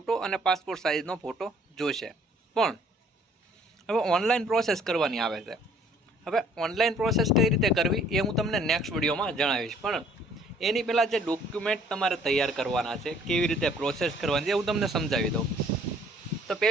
અને પાસપોર્ટ સાઇઝનો ફોટો જોશે। પણ હવે ઓનલાઈન પ્રોસેસ કરવાની આવે છે। હવે ઓનલાઈન પ્રોસેસ કઈ રીતે કરવી એ હું તમને નેક્સ્ટ વિડીયોમાં જણાવીશ, પણ એની પહેલાં જે ડોક્યુમેન્ટ તમારે તૈયાર કરવાના છે, કેવી રીતે પ્રોસેસ કરવાની છે, હું તમને સમજાવી દઉં। તો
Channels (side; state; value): both; normal; correlation 0.59